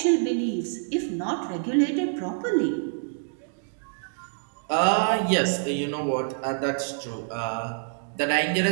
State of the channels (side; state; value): left; silent; 61 dB below the other